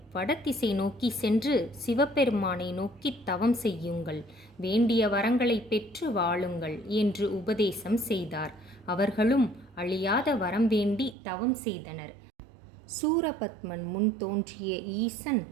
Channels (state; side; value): drops out; left; at 11.2 s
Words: வடதிசை நோக்கி சென்று சிவபெருமானை நோக்கி தவம் செய்யுங்கள், வேண்டிய வரங்களை பெற்று வாழுங்கள் என்று உபதேசம் செய்தார். அவர்களும் அழியாத வரம் வேண்டி தவம் செய்தனர். சூரபத்மன் முன் தோன்றிய ஈசன்,